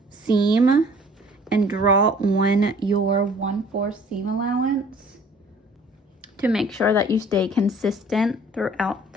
seam and draw on your 1/4 seam allowance to make sure that you stay consistent throughout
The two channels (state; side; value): normal; both; correlation 0.53